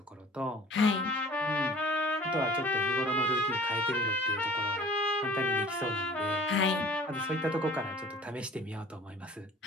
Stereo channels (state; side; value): normal; both; correlation 0.48